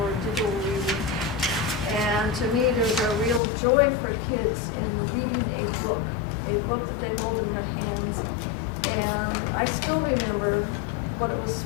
digital reading. And to me, there's a real joy for kids in reading a book that they hold in their hands. And I still remember what it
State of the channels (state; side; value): drops out; right; at 3.4 s